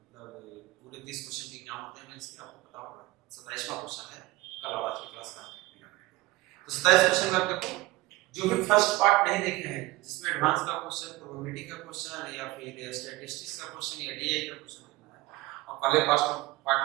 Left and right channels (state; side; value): quieter; left; 19.5 dB